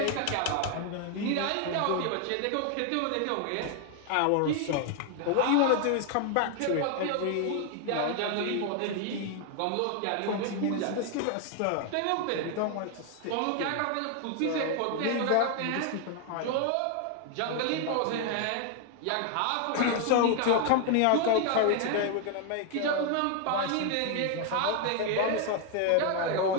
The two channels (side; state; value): both; different; correlation 0.00